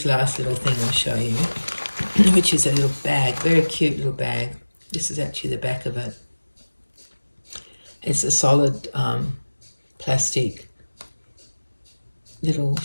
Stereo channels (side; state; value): both; inverted; correlation -1.00